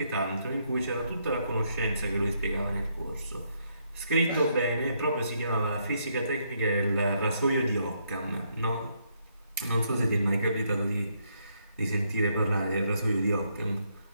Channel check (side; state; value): both; inverted; correlation -0.74